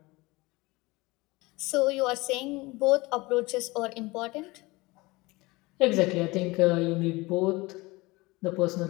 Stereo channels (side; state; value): right; quieter; 22.6 dB